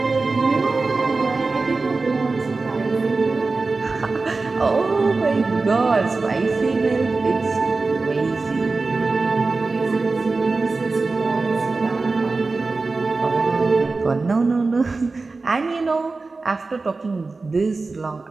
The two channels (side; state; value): left; quieter; 3.8 dB